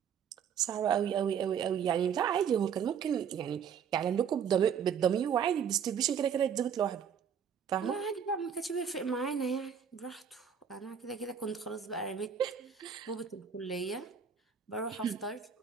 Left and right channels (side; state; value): left; quieter; 7.6 dB